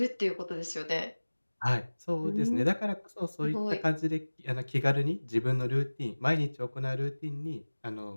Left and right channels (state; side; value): inverted; both; correlation -1.00